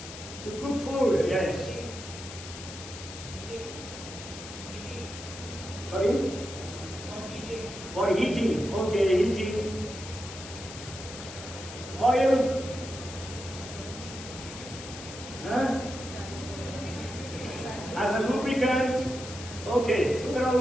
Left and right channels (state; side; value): noise; left; hiss, 12 dB below the sound